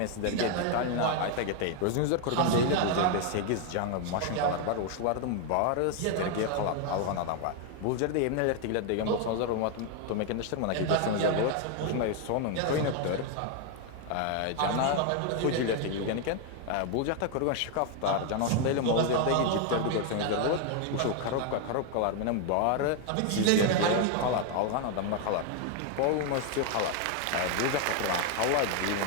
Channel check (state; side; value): different; both; correlation 0.01